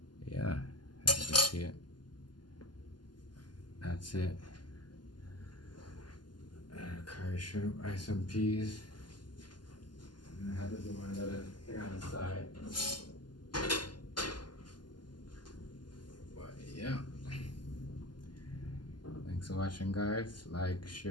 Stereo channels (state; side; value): late; right; 0.71 ms